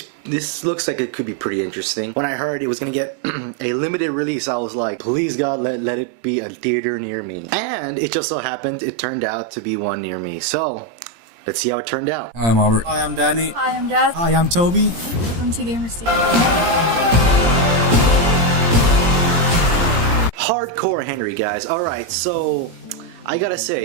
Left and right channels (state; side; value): late; left; 17 ms